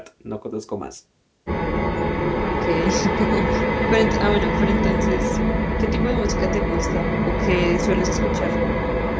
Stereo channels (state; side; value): identical; both; correlation 1.00